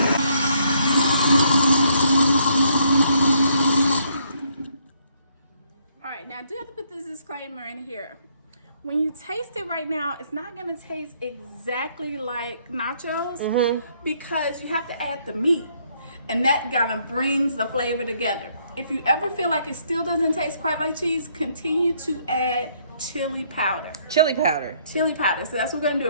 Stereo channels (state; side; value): inverted; both; correlation -0.68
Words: All right, now I do have to put this disclaimer in here. When you taste it right now, it's not gonna taste exactly like nachos because you have to add the meat. And that kind of brings the flavor together. If you ever feel like it still doesn't taste quite like cheese, continue to add chili powder. Chili powder. Chili powder. So that's what we're gonna do.